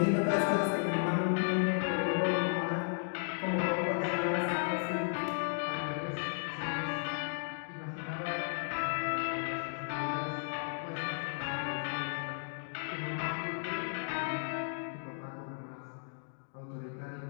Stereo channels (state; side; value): silent; right; digital silence